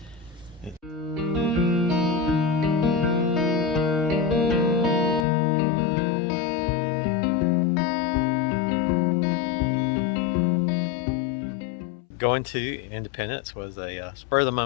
Going to Independence was a spur of the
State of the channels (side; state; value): right; drops out; at 5.2 s